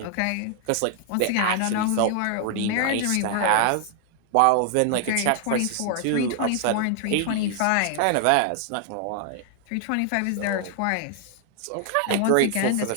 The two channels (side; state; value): both; different; correlation 0.00